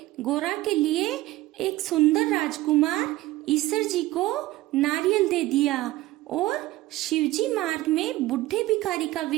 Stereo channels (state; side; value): quieter; left; 17.4 dB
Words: गोरा के लिए एक सुंदर राजकुमार ईश्वर जी को नारियल दे दिया और शिवजी मार्ग में बुढ़े भिखारी का